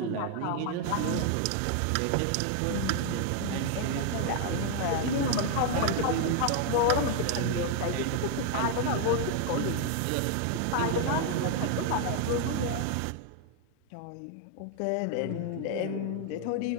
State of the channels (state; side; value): different; both; correlation 0.00